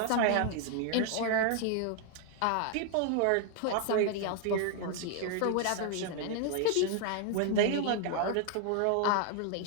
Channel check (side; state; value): both; different; correlation 0.00